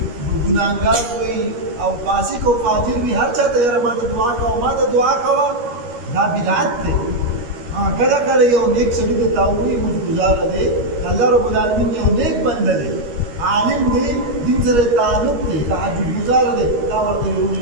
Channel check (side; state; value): left; late; 13 ms